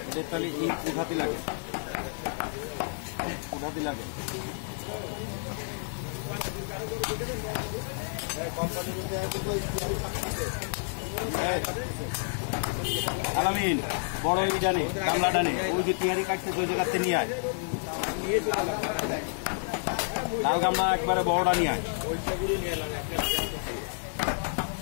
তাহলে এই উঠাতে লাগে আলামিন বড় ওই জানে গামলা ডানে ওই যে টিয়ারি কাটতে ওই জায়গাতে নিয়ে আয় লাল গামলা একবারে বড়টা নিয়ে আয়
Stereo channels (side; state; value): right; silent; 58 dB below the other